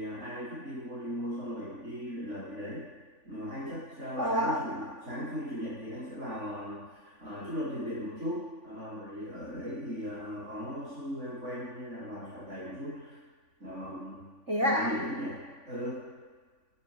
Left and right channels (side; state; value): left; late; 3.5 ms